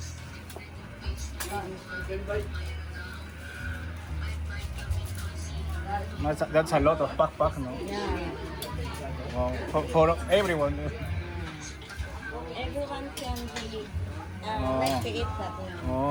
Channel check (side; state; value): both; identical; correlation 1.00